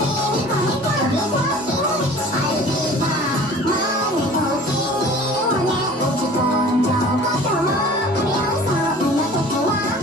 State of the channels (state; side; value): normal; both; correlation 0.45